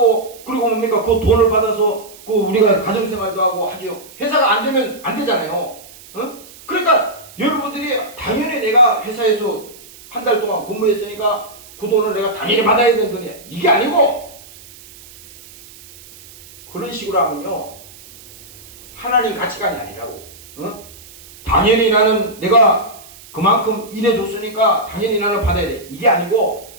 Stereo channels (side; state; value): right; noise; hiss, 20 dB below the sound